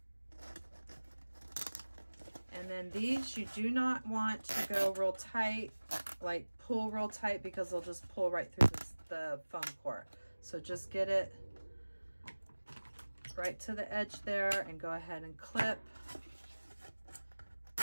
And then these, you do not want to go real tight, like pull real tight, because they'll just pull right through the foam core. So just get it right to the edge there and go ahead and clip.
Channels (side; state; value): both; inverted; correlation -1.00